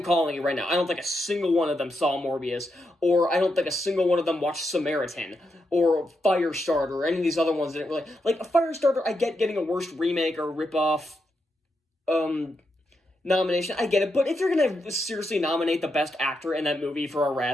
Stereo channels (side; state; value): both; normal; correlation 0.84